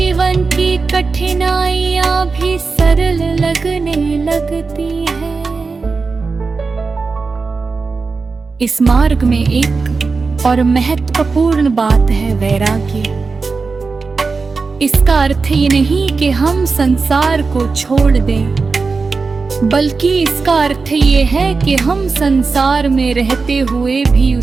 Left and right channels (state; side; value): quieter; left; 4.4 dB